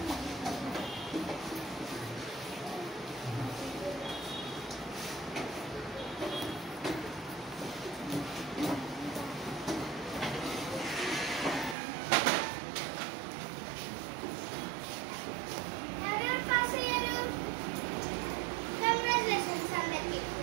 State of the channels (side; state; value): left; drops out; at 11.8 s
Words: ఎవరెవరు పాస్ అయ్యారు? కంగ్రాచులేషన్స్ అందరికీ.